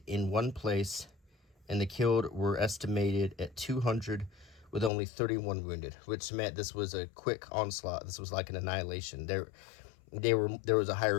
in one place, and the killed were estimated at 200, with only 31 wounded, which meant this was a quick onslaught. This was like an annihilation. There was a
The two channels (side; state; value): right; drops out; at 4.9 s